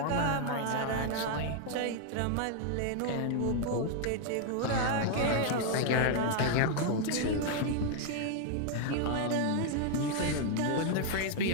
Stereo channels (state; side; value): different; both; correlation 0.00